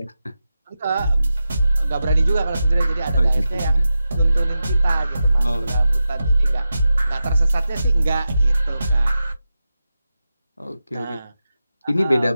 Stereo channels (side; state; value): both; inverted; correlation -0.91